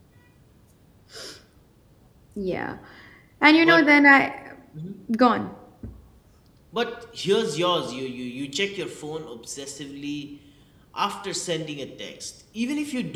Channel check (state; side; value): identical; both; correlation 1.00